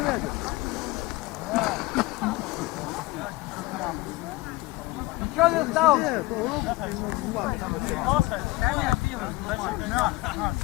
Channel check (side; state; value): right; quieter; 20.5 dB